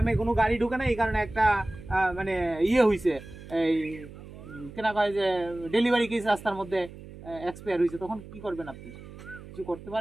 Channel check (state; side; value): noise; right; hum, 16 dB below the sound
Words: কোনো গাড়ি ঢুকে না এই কারণে একটা মানে ইয়ে হয়েছে এই কেনা কয় যে ডেলিভারি কেস রাস্তার মধ্যে এক্সপায়ার হয়েছে তখন কি করবেন আপনি কিছু করতে